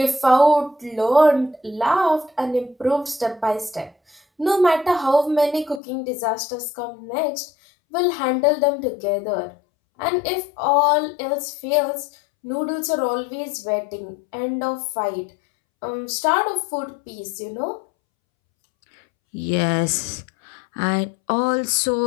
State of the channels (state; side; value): drops out; right; at 5.8 s